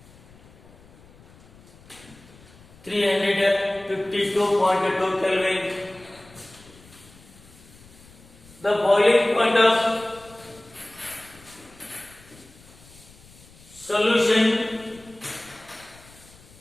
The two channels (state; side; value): noise; left; rumble, 24 dB below the sound